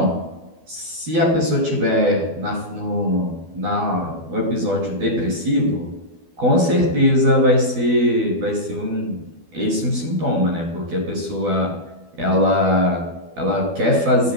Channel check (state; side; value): late; left; 12 ms